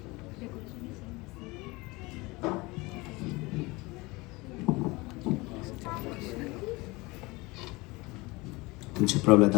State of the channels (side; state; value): right; quieter; 23.5 dB